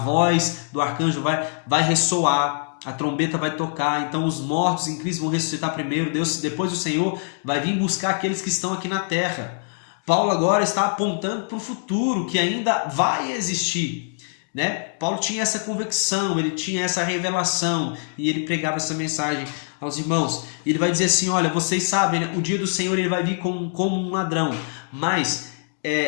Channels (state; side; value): silent; right; digital silence